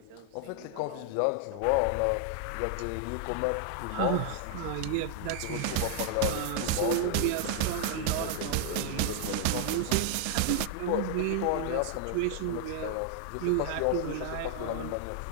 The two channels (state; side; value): different; both; correlation 0.00